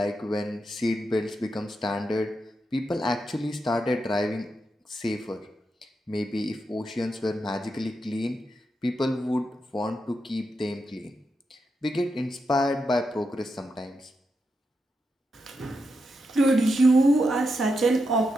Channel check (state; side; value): normal; both; correlation 0.85